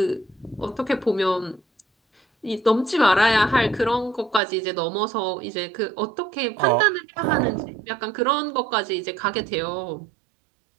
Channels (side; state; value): left; drops out; at 4.4 s